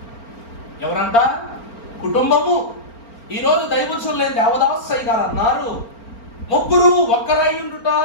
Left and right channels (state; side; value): late; right; 4.4 ms